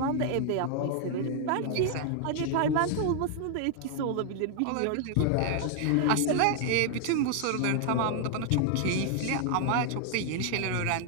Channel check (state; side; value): different; both; correlation 0.00